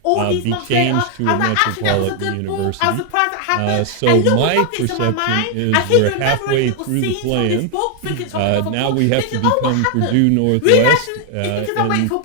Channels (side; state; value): both; different; correlation 0.00